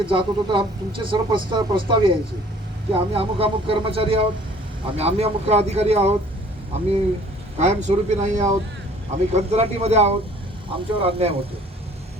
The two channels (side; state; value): both; normal; correlation 0.53